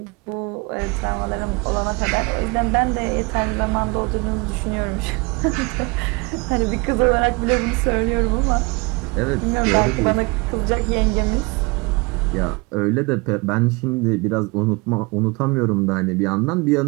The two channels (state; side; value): quieter; left; 27.4 dB